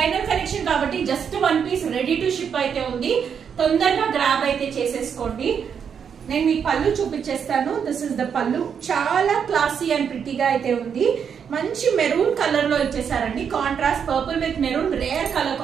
కలెక్షన్ కాబట్టి just 1 piece ready to ship అయితే ఉంది, తొందరగా గ్రాబ్ అయితే చేసేసుకోండి. నేను మీకు పళ్ళు చూపించేస్తాను. దిస్ ఇస్ ద పళ్ళు, చాలా క్లాసీ అండ్ ప్రిటీగా అయితే ఉంది. మంచి మెరూన్ కలర్ లో ఇచ్చేసారండి, contrast purple with maroon, rare colour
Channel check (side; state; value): left; quieter; 7.3 dB